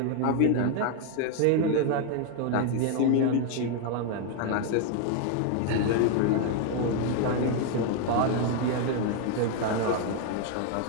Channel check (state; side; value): different; both; correlation 0.01